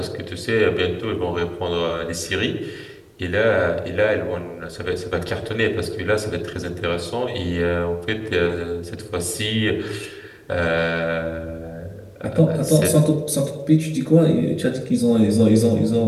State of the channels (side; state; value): both; identical; correlation 1.00